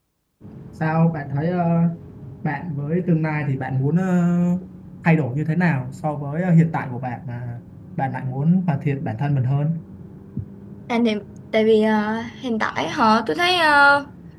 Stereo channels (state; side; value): identical; both; correlation 1.00